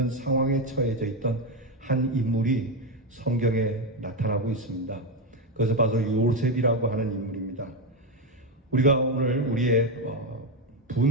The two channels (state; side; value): normal; both; correlation 0.09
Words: 상황에 처해져 있던 한 인물이 성경에 나타나고 있습니다. 그것을 봐서 요셉이라고 하는 인물입니다. 우리가 오늘 우리의